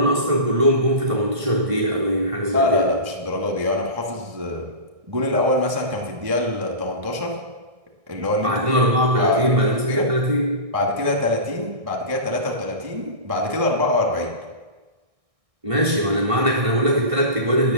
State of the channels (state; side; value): late; left; 1.6 ms